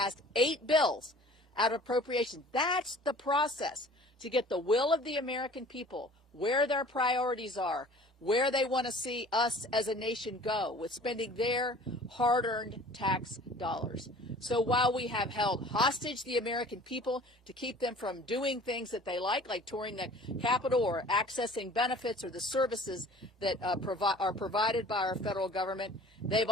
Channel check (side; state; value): both; normal; correlation 0.47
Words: 8 bills out of appropriations. That's the process to get the will of the American people, where their priorities are, where they want to see us as a nation go with spending their hard-earned tax dollars. So while we have held hostage the American people to keep them from doing things that they like touring the Capitol or accessing benefits or the services that are provided by our federal government, they've